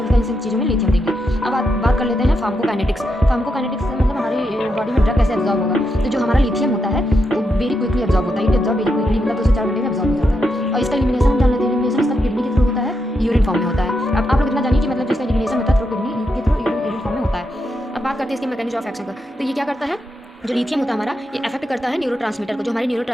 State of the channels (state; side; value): normal; both; correlation 0.83